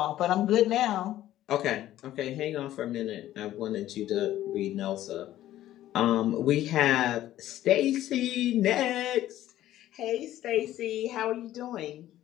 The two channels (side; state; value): right; quieter; 13.5 dB